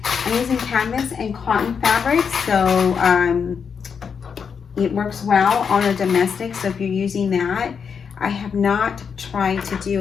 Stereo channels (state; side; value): quieter; right; 6.5 dB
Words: I'm using canvas and cotton fabric, so it works well on a domestic. So if you're using that, I have not tried to